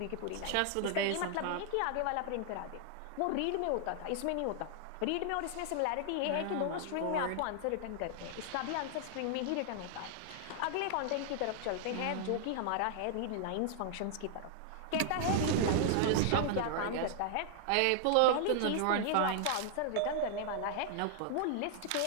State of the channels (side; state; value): both; different; correlation 0.00